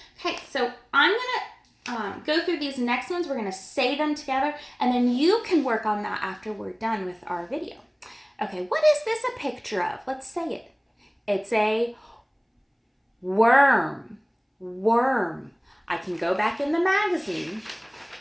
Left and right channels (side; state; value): both; identical; correlation 1.00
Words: Okay, so I'm going to these next ones, we're gonna say them together, and then you can work on that after we're done with our video. Okay, what is this a picture of? Let's say it. It's a worm. Worm. I can go back in the magazine